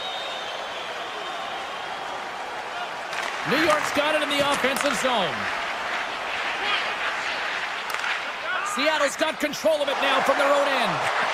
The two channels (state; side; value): identical; both; correlation 1.00